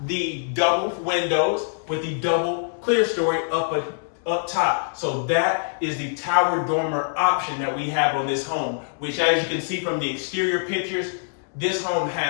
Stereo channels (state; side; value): silent; right; digital silence